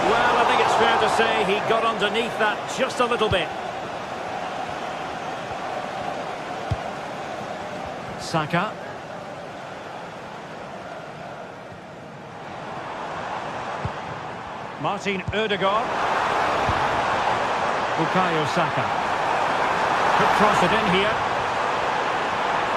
Well, I think it's fair to say he got underneath that just a little bit. Saka. Martin Ødegaard. Bukayo Saka. Could cross it in here.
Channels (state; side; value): identical; both; correlation 1.00